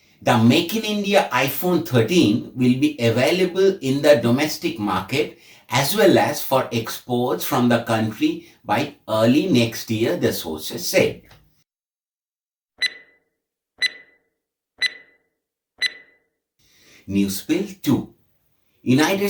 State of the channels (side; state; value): both; identical; correlation 1.00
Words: The Make in India iPhone 13 will be available in the domestic market as well as for exports from the country by early next year, the sources said. News Spill 2. United